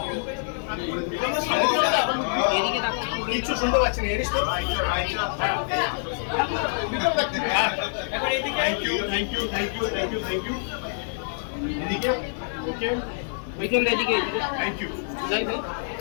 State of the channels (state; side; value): silent; right; 61 dB below the other